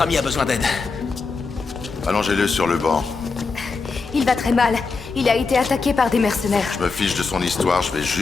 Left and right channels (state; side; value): quieter; right; 4.4 dB